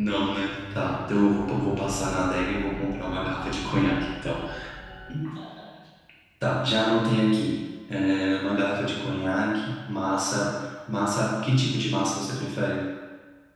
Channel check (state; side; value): identical; both; correlation 1.00